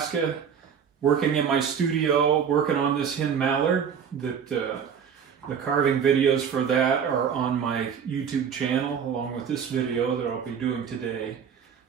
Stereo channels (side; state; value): left; quieter; 7.4 dB